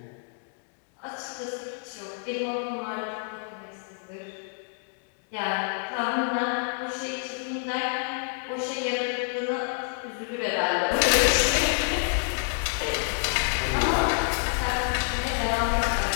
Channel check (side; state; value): right; silent; 55 dB below the other